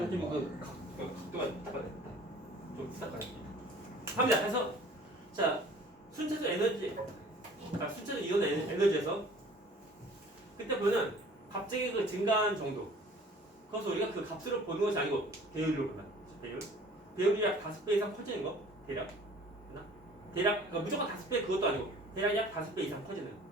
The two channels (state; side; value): normal; both; correlation 0.50